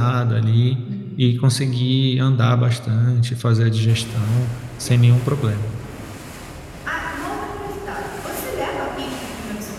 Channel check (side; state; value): both; identical; correlation 1.00